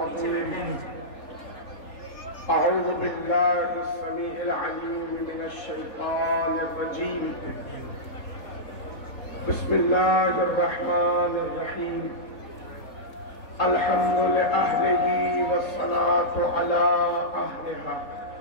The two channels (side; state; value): right; late; 3.7 ms